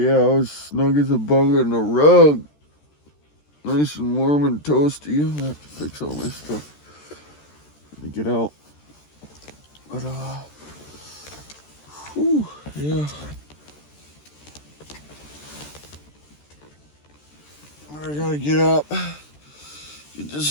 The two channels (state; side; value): late; right; 13 ms